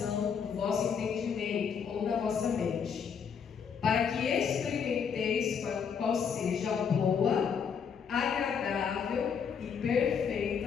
do vosso entendimento ou da vossa mente, para que experimenteis qual seja a boa, agradável e perfeita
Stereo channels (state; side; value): quieter; right; 6.8 dB